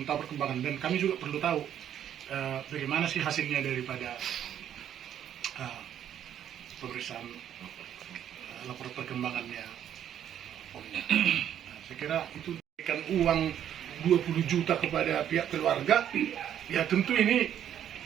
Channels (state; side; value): quieter; left; 10.1 dB